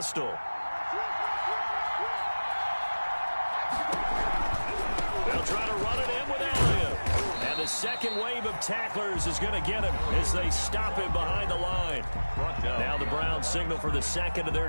They'll try to run it in with Elliott. And the second wave of tacklers is going to get him as they stop him behind the line. Now the Browns signal for the 2nd of their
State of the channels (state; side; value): inverted; both; correlation -1.00